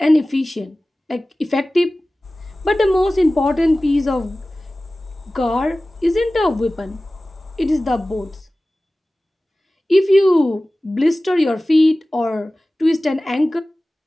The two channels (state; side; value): normal; both; correlation 0.97